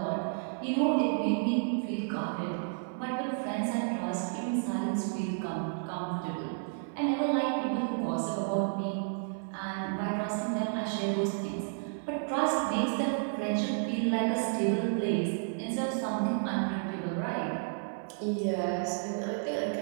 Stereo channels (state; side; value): silent; left; 57 dB below the other